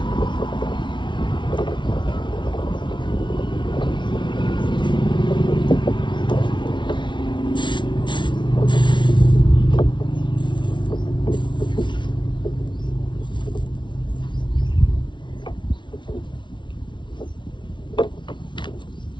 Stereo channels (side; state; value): right; late; 0.23 ms